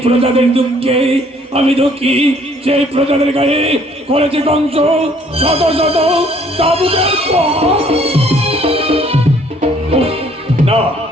প্রজাদের দুঃখে আমি দুঃখী, সেই প্রজাদের গায়ে করেছে কংস শত শত চাবুকের প্রহার। না,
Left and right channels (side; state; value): both; normal; correlation 0.61